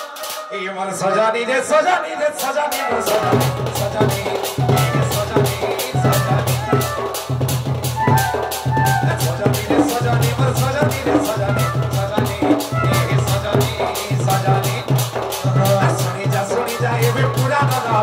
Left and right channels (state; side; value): identical; both; correlation 1.00